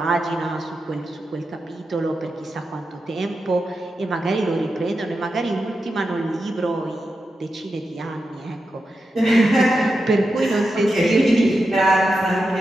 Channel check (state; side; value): normal; both; correlation 0.89